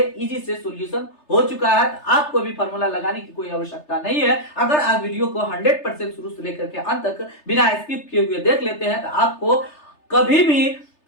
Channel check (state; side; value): late; right; 3.3 ms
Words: इजी से सॉल्यूशन हो चुका है। आपको भी फार्मूला लगाने की कोई आवश्यकता नहीं है। अगर आप वीडियो को 100% शुरू से लेकर के अंत तक बिना स्किप किए हुए देख लेते हैं तो आपको कभी भी